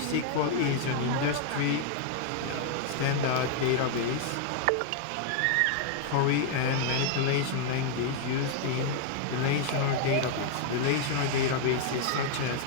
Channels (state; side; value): different; both; correlation 0.00